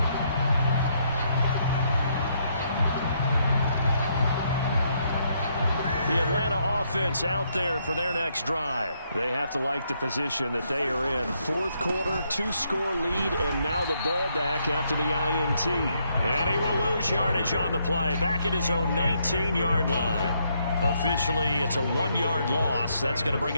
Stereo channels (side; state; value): both; inverted; correlation -0.74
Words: The Atlanta offense out there for their next drive. They have to like the position that they are in. Fourth quarter, 2-score lead, and now the ball back after the INT. And he will lose yardage on the play, back at his own 19-yard line. Officially, it's a 1-yard loss. That's going to bring